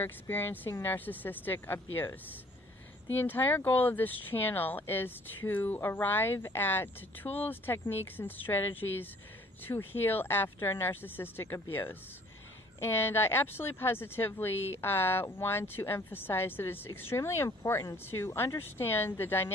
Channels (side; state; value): both; normal; correlation 0.56